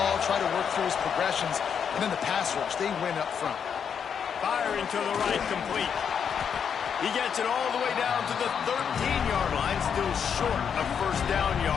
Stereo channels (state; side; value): quieter; right; 7.4 dB